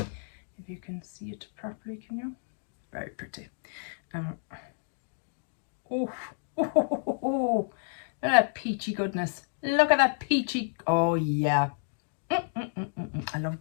If you can see it properly, can you? Very pretty. Oh, look at that peachy goodness. Look at that peachy. Oh, yeah. I love a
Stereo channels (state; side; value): silent; right; digital silence